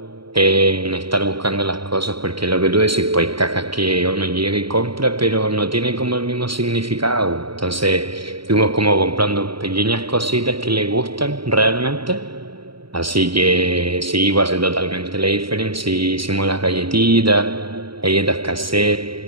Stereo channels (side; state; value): left; late; 0.74 ms